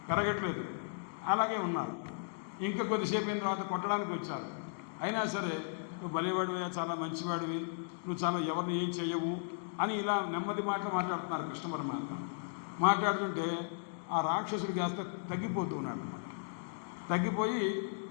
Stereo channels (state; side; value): silent; right; digital silence